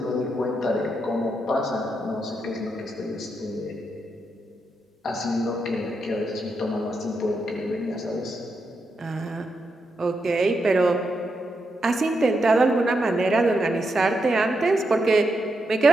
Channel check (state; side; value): normal; both; correlation 0.84